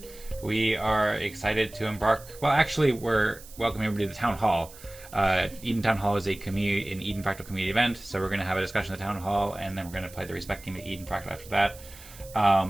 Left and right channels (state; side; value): noise; right; hiss, 19 dB below the sound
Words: we are excited to embark. Well, actually, we're welcoming everybody to the Town Hall. Eden Town Hall is an Eden Fractal community event, so we're going to have a discussion at the Town Hall, and then we're going to play the Respect game at Eden Fractal after that.